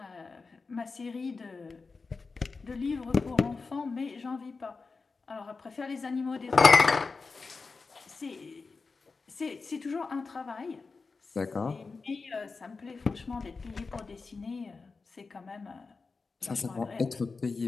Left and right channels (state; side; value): quieter; right; 4.3 dB